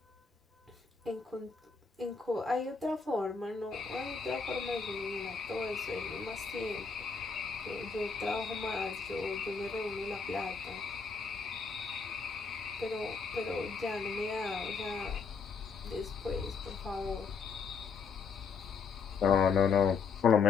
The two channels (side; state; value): right; quieter; 5.3 dB